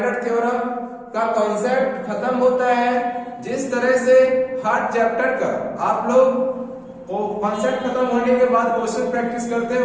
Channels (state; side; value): identical; both; correlation 1.00